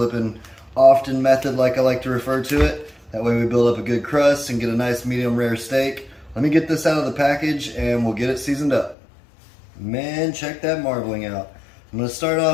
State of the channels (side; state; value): right; drops out; at 9.0 s